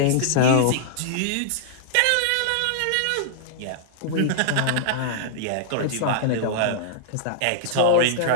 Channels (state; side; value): different; both; correlation -0.01